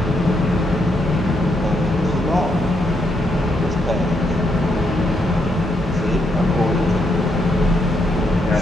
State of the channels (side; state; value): both; normal; correlation 0.78